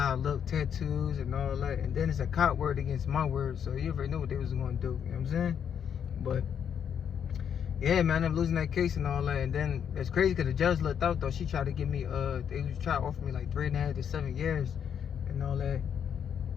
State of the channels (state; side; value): quieter; right; 8.2 dB